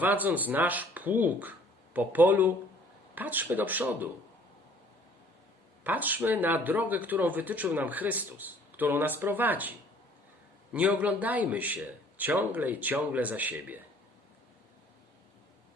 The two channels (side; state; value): both; normal; correlation 0.55